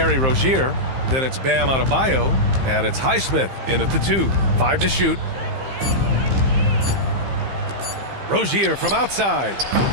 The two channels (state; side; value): late; left; 15 ms